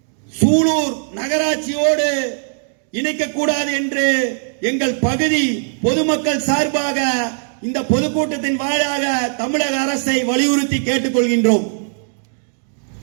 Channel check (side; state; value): left; silent; digital silence